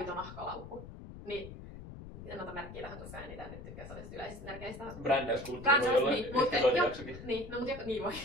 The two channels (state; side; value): noise; left; rumble, 13 dB below the sound